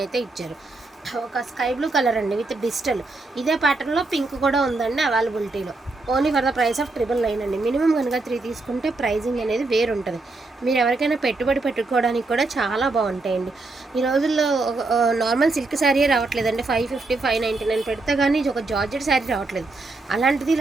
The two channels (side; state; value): left; quieter; 3.3 dB